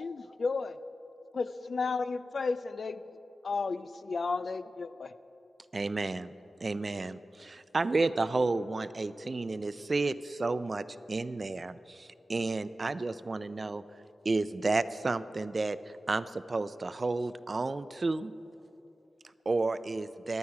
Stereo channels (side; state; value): both; normal; correlation 0.94